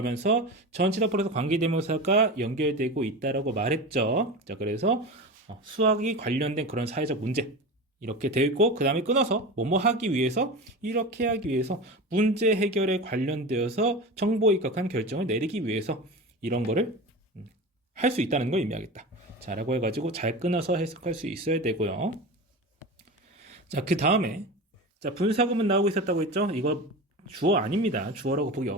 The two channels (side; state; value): both; normal; correlation 0.28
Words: 전치사 플러스 관계대명사가 연결되고 있다라고 말했죠. 자, 그래서 수학이 관련된 그런 사회적 문제 이렇게 되어 있고 그 다음에 끊어서 뭐뭐 하기 위해서 이렇게 하기 위해서 문제 해결에 관련되어서 정보에 입각한 결정을 내리기 위해서 이런 거를 할 수 있다는 걸 의미하겠다. 자, 라고 해가지고 잘 끊어서 해석할 수 있어야 되고요. 자, 그 다음에 자, 분사구문 나오고 있었다고 했죠? 이거 주어 아닙니다. 주어라고 보기